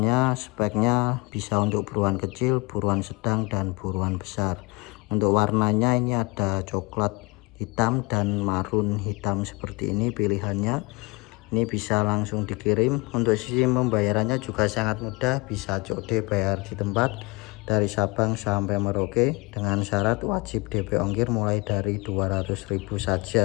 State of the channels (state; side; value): quieter; right; 26.3 dB